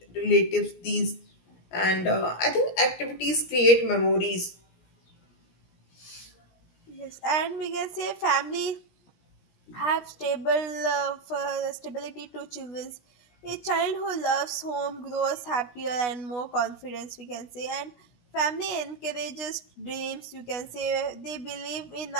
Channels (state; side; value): late; right; 17 ms